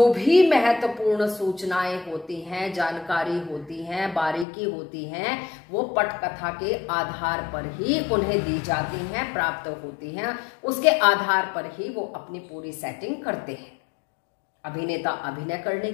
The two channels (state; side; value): drops out; right; at 4.5 s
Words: भी महत्वपूर्ण सूचनाएं होती हैं, जानकारी होती हैं, बारीकी होती हैं, वो पटकथा के आधार पर ही उन्हें दी जाती हैं, प्राप्त होती हैं। उसके आधार पर ही वो अपनी पूरी सेटिंग करते हैं। अभिनेता अभिनय करने